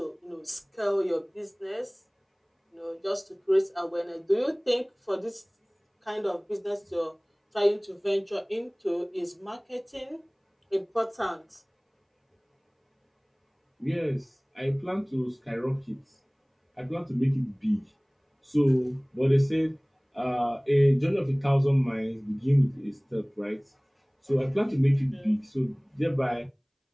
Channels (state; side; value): identical; both; correlation 1.00